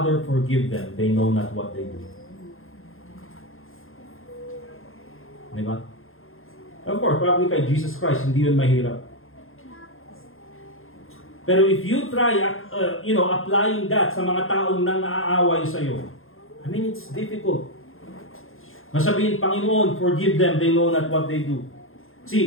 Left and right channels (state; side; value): late; right; 0.60 ms